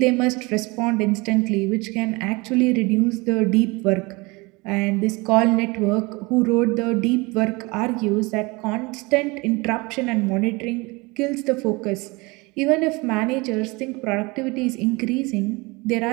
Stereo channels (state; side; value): quieter; left; 25.2 dB